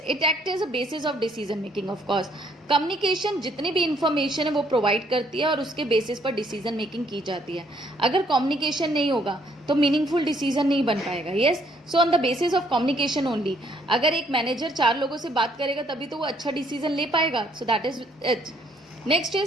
it act as a basis of decision making. Of course communication जितनी भी information है वो प्रोवाइड करती है और उसके बेसिस पर डिसीजन मेकिंग की जाती है. अगर कम्युनिकेशन नहीं होगा तो मीनिंगफुल डिसीजन नहीं बन पाएगा. Yes, so on the basis of communication only. अगर एक मैनेजर 4 लोगों से बात करेगा तभी तो वो अच्छा डिसीजन ले पाएगा. So that is it. Next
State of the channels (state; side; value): normal; both; correlation 0.67